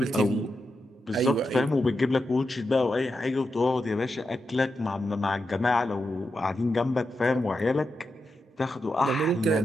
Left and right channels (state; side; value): normal; both; correlation 0.87